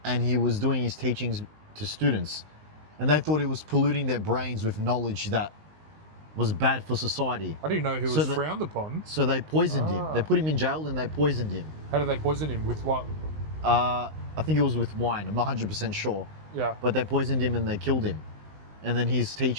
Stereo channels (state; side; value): late; left; 19 ms